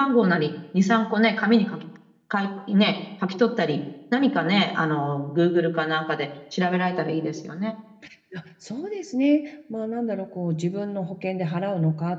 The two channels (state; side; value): identical; both; correlation 1.00